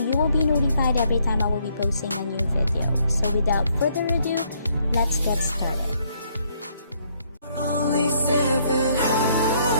will be notified every time I will be posting a new video. So without further ado, let's get started. Only 7,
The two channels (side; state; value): both; inverted; correlation -0.69